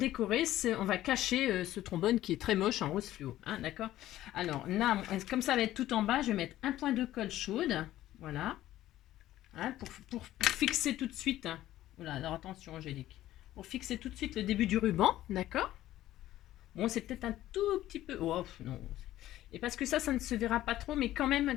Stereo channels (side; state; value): right; quieter; 14.2 dB